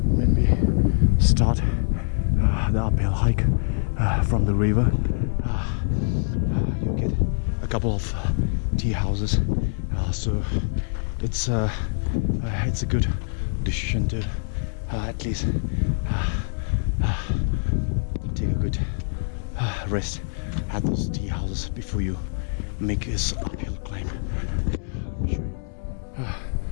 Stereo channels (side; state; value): right; silent; 62 dB below the other